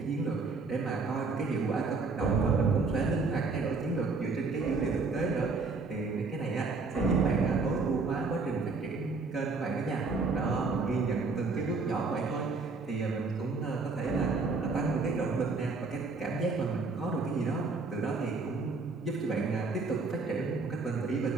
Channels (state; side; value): quieter; left; 4.1 dB